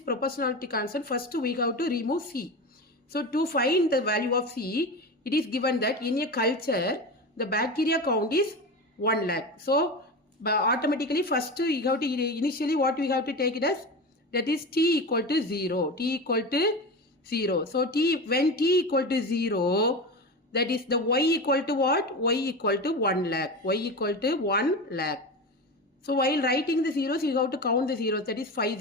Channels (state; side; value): normal; both; correlation 0.25